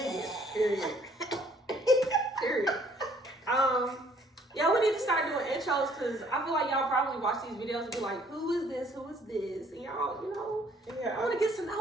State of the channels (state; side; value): normal; both; correlation 0.61